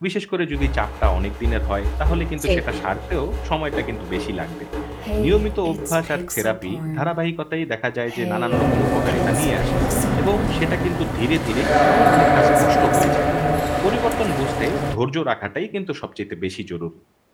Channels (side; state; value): both; identical; correlation 1.00